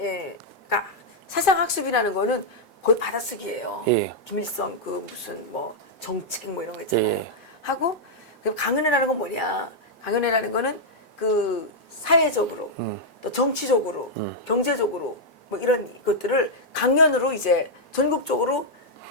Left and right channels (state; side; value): normal; both; correlation -0.04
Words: 그러니까 사상학습이라는 거는 거의 받아쓰기예요. 예. 김일성 그 무슨 뭐 정책 뭐 이런 거 있잖아요. 예. 하고 그럼 강연회라는 건 뭐냐? 강연회라는 거는 그 사회적으로 또 정치적으로 경제적으로 뭐 이런 것들을 강연으로 이제 전국적으로